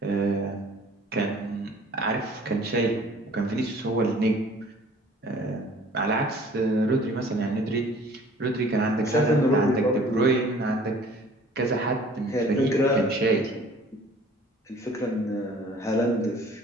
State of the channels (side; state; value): both; normal; correlation 0.51